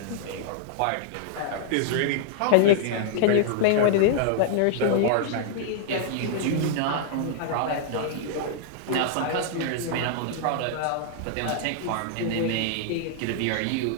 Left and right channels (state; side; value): different; both; correlation -0.01